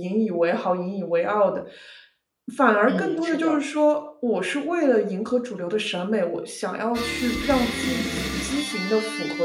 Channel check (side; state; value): both; identical; correlation 1.00